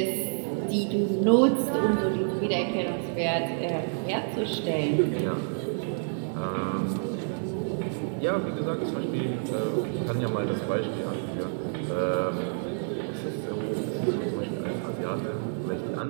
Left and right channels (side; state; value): left; silent; digital silence